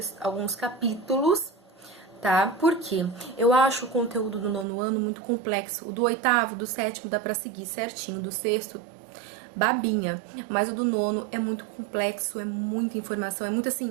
alguns capítulos, tá? Por quê? Eu acho o conteúdo do 9º ano muito complexo, o do 8º, do 7º dá pra seguir certinho, do 6º babinha, mas o do 9º é muito complexo, é muita informação, é muito assim...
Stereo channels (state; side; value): drops out; left; at 4.7 s